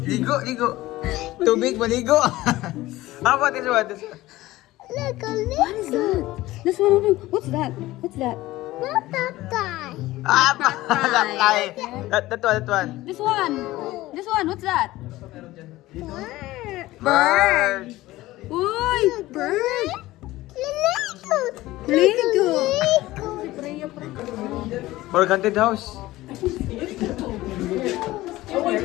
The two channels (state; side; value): quieter; right; 17.4 dB